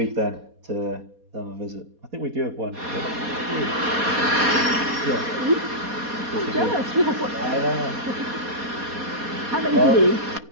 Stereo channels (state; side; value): late; left; 4.2 ms